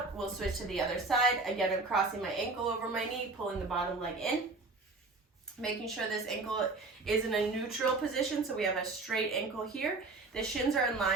We'll switch to the other side. Again, I'm crossing my ankle over my knee, pulling the bottom leg in. Making sure this ankle is in a neutral position, so we have a straight ankle here. The shins are in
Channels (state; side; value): quieter; left; 3.5 dB